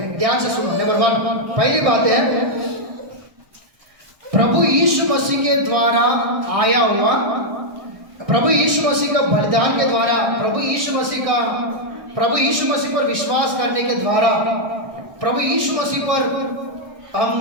ध्यान से सुनो। नंबर 1, पहली बात है प्रभु यीशु मसीह के द्वारा आया हुआ, प्रभु यीशु मसीह का बलिदान के द्वारा, प्रभु यीशु मसीह पर विश्वास करने के द्वारा, प्रभु यीशु मसीह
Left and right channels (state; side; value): late; left; 1.2 ms